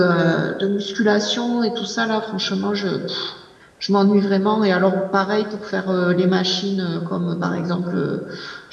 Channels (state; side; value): identical; both; correlation 1.00